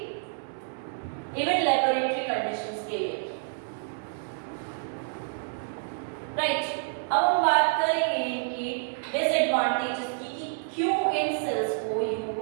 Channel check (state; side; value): silent; left; digital silence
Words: इवन लैबोरेटरी कंडीशंस के लिए। राइट, अब हम बात करेंगे इनकी डिसएडवांटेजेस की कि क्यों इन सेल्स को